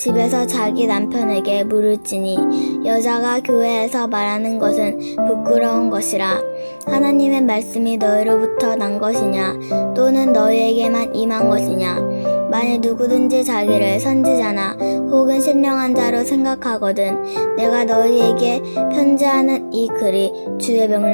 자기 남편에게 물을지니 여자가 교회에서 말하는 것은 부끄러운 것이라. 하나님의 말씀이 너희로부터 난 것이냐 또는 너희에게만 임한 것이냐. 만일 누구든지 자기를 선지자나 혹은 신령한 자로 생각하거든 내가 너희에게 편지하는 이 글이 주의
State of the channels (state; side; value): inverted; both; correlation -1.00